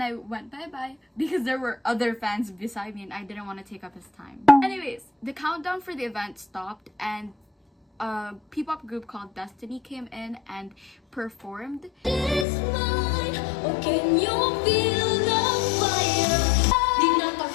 I went bye-bye because there were other fans beside me and I didn't want to take up his time. Anyways, the countdown for the event stopped and a P-pop group called Destiny came in and performed.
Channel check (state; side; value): drops out; right; at 12.5 s